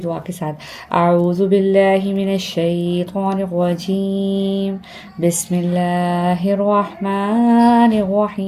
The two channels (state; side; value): identical; both; correlation 1.00